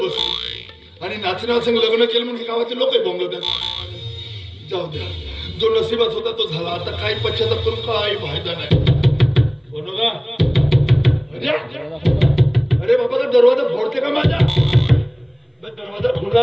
बसलो आणि नाचण्यासंग लग्न केलं म्हणजे गावाचे लोकही बोंबलतात. जाऊ द्या, जो नशिबात होता तो झाला. आता काही पश्चाताप करून काही फायदा नाही. बरोबर. अरे बाबा, का दरवाजा फोडते का माझा? दरवाजा खुला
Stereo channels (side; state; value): both; identical; correlation 1.00